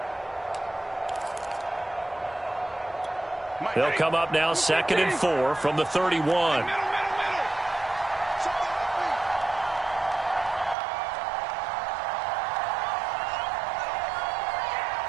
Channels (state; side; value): drops out; left; at 10.8 s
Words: They'll come up now 2nd and 4 from the 31.